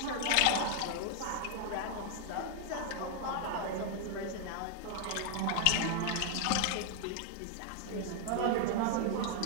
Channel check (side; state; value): both; different; correlation 0.00